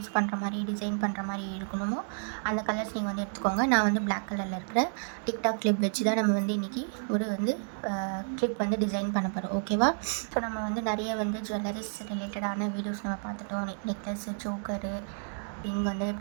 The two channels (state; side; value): silent; left; 57 dB below the other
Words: பண்ணுற மாதிரி டிசைன் பண்ணுற மாதிரி இருக்கணுமோ அந்த கலர்ஸ் நீங்கள் வந்து எடுத்துக்கோங்க. நான் வந்து பிளாக் கலரில் இருக்கிற டிக்டாக் கிளிப் வச்சு தான் நம்ம வந்து இன்றைக்கி ஒரு வந்து கிளிப் வந்து டிசைன் பண்ண போகிறோம். ஓகேவா, ஸோ நம்ம வந்து நிறைய வந்து ஜுவல்லரிஸ் ரிலேட்டடான வீடியோஸ் நம்ம பார்த்துட்டோம். நெக்லஸ்ஸு, சோக்கரு, இங்கே வந்து